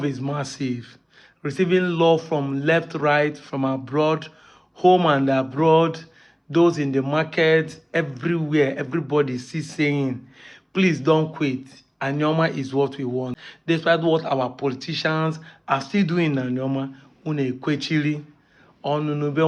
is massive. Receiving love from left, right, from abroad, home and abroad, those in the market, everywhere, everybody is saying, please don't quit. Anioma is what we want. Despite what our politicians are still doing in Anioma, une kwechiri, onunube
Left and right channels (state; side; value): identical; both; correlation 1.00